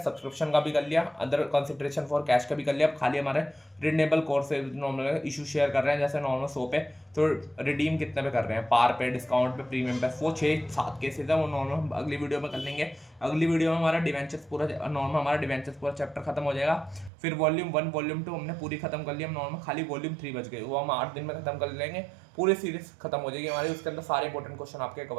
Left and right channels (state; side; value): drops out; left; at 17.1 s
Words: का भी कर लिया, अदर कंसिडरेशन फॉर कैश का भी कर लिया। अब खाली हमारे रिडनेबल कोर्स से नॉर्मल इशू शेयर कर रहे हैं, जैसे नॉर्मल 100 पे, तो रिडीम कितने पे कर रहे हैं, पार पे, डिस्काउंट पे, प्रीमियम पे, वो 6-7 केसेस है, वो नॉर्मल अगली वीडियो में कर लेंगे। अगली वीडियो में हमारा डिवेंचर्स पूरा नॉर्मल, हमारा डिवेंचर्स पूरा चैप्टर खत्म हो जाएगा। फिर वॉल्यूम 1 वॉल्यूम 2 हमने पूरी खत्म कर ली, हम नॉर्मल खाली वॉल्यूम 3 बच गए, वो हम 8 दिन में खत्म कर लेंगे, पूरी सीरीज खत्म हो जाएगी हमारी, उसके अंदर सारे इंपॉर्टेंट क्वेश्चन आपके